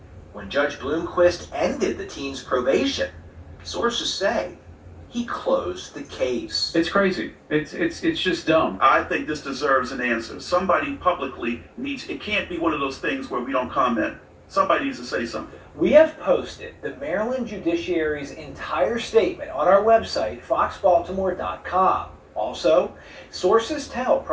When Judge Bloomquist ended the teen's probation, sources say he closed the case. It's crazy. It's just dumb. I think this deserves an answer. Somebody publicly needs, it can't be one of those things where we don't comment. Somebody needs to say something. We have posted the Maryland Judiciary's entire statement on our website, foxbaltimore.com. Also, sources tell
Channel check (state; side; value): identical; both; correlation 1.00